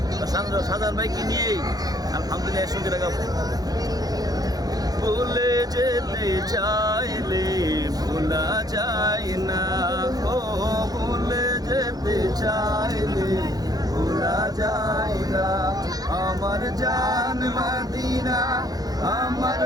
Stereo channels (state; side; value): late; left; 0.19 ms